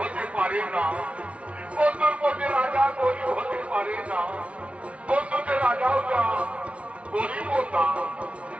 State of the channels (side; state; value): left; late; 0.062 ms